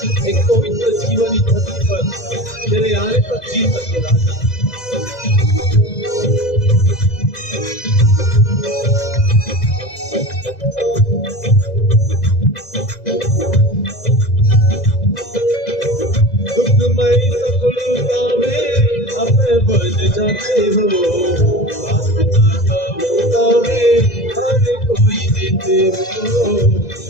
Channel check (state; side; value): late; right; 2.0 ms